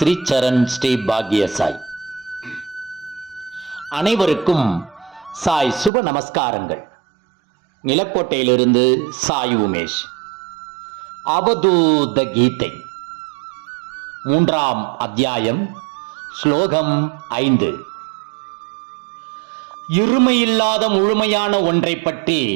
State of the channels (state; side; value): drops out; left; at 5.9 s